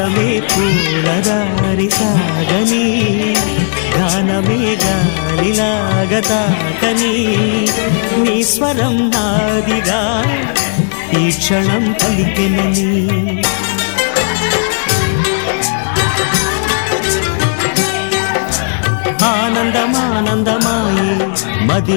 పూలదారి సాగని గానమే గాలిలాగా తాకని నీ స్వరం నాదిగా ఈ క్షణం పలికెనని ఆనందమానందమాయే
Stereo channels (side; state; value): right; silent; digital silence